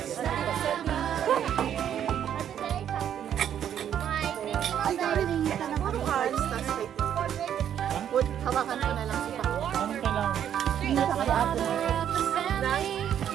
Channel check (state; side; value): quieter; left; 9.7 dB